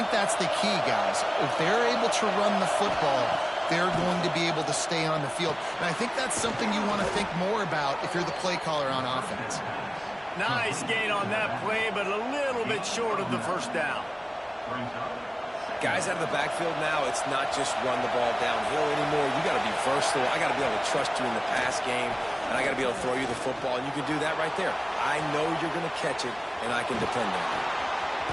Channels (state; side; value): identical; both; correlation 1.00